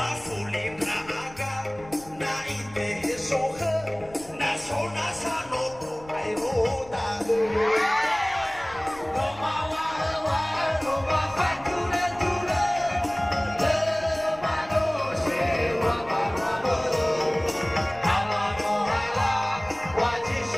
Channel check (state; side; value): noise; left; rumble, 21 dB below the sound